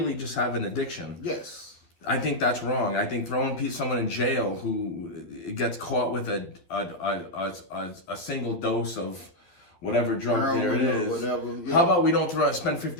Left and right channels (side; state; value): right; late; 12 ms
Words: just have an addiction. Yes. I think that's wrong. I think throwing someone in jail who gets caught with a single dose of whatever drug there it is. Whatever, yeah. How about we don't spend